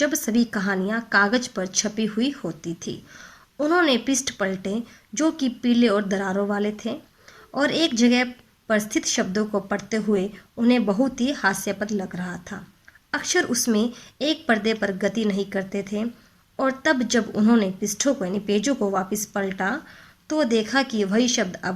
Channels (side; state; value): both; identical; correlation 1.00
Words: सभी कहानियां कागज पर छपी हुई होती थी। उन्होंने पृष्ठ पलटे जो कि पीले और दरारों वाले थे, और एक जगह पर स्थित शब्दों को पढ़ते हुए उन्हें बहुत ही हास्यास्पद लग रहा था। अक्षर उसमें एक पर्दे पर गति नहीं करते थे, और तब जब उन्होंने पृष्ठों को यानी पेजों को वापस पलटा तो देखा कि वही शब्द